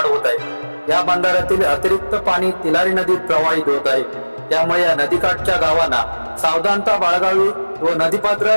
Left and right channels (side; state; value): both; inverted; correlation -1.00